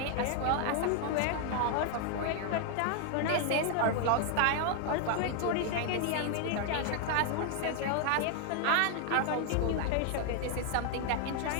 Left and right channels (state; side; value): different; both; correlation 0.00